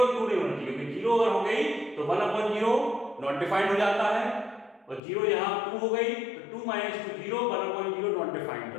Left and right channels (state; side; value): drops out; right; at 5.0 s